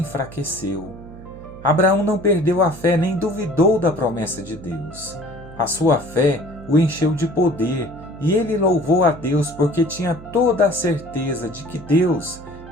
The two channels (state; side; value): noise; right; hum, 16 dB below the sound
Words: Abraão não perdeu a fé nem duvidou da promessa de Deus. A sua fé o encheu de poder, e ele louvou a Deus porque tinha toda a certeza de que Deus